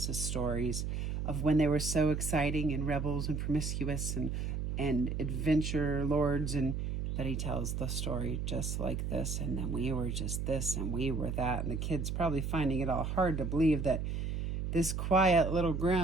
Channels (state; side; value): noise; right; hum, 2 dB below the sound